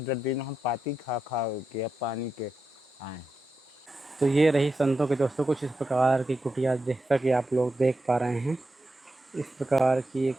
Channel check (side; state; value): both; normal; correlation 0.88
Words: दिन हम पाती खा खा के अब पानी के आए। तो ये रही संतों के दोस्तों कुछ इस प्रकार की कुटिया जैसा कि आप लोग देख पा रहे हैं। इस प्रकार की ये